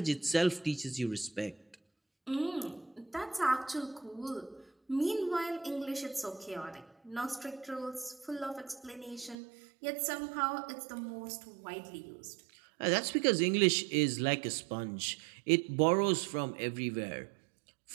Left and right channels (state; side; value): drops out; left; at 9.3 s